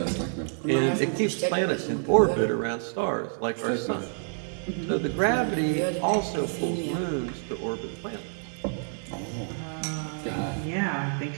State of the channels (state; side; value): silent; left; 59 dB below the other